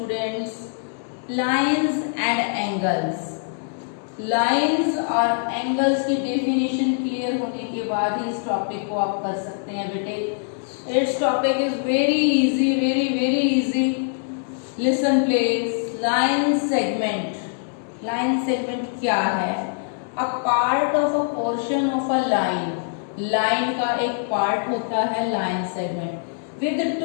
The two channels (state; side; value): silent; right; digital silence